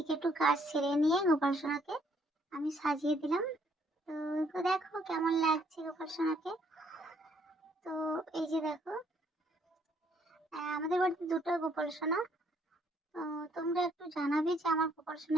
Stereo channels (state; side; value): normal; both; correlation 0.67